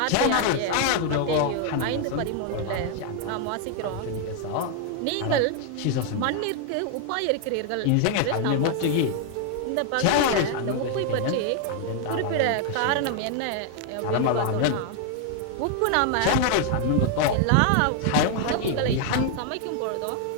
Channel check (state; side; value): different; both; correlation 0.00